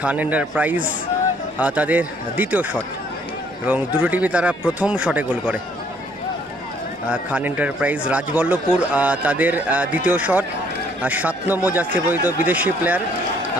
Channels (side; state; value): both; normal; correlation 0.64